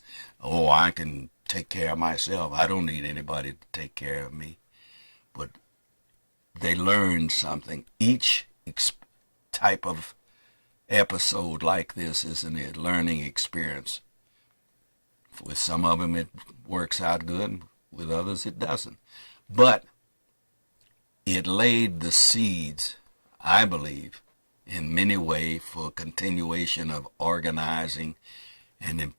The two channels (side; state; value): both; inverted; correlation -1.00